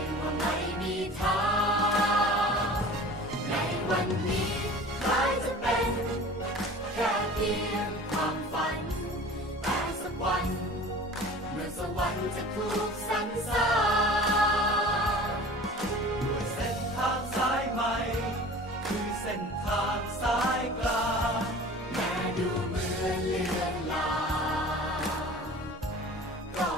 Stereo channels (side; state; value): both; normal; correlation 0.41